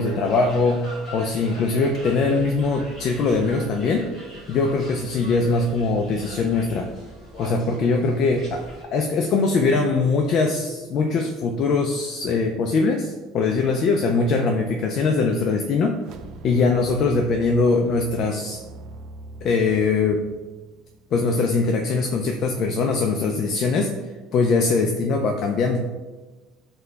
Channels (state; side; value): quieter; right; 3.5 dB